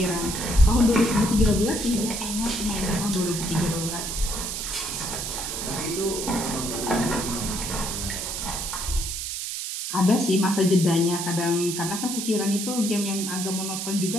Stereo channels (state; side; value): noise; right; hiss, 4 dB below the sound